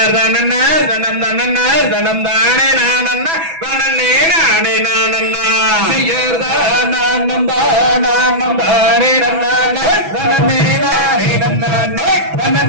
தனம் தனன்னா தனம் தானே நானன்னா தனனே நானே நானன்னா செய்யாதனம் தானே நன்னா தனனே நானே நன்னா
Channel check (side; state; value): left; late; 6.1 ms